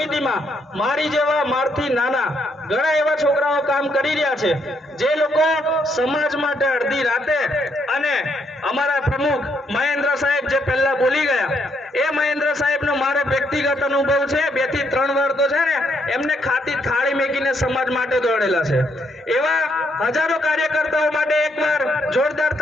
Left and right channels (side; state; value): both; normal; correlation 0.74